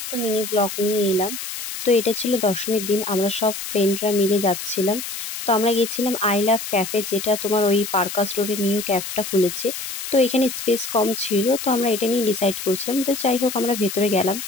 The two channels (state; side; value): noise; left; hiss, 7 dB below the sound